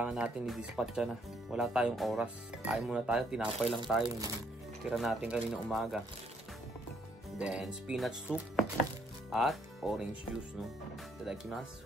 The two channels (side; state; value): both; normal; correlation 0.69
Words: natin i-dispatch na. Wala tayong oras. Kain muna tayo, tinapay lang tayo. Tira natin kanina umaga. Then, spinach soup at orange juice. No?